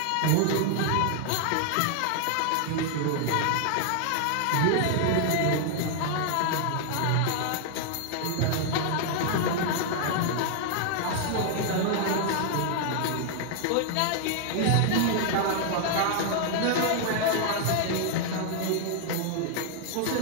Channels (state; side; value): different; both; correlation 0.00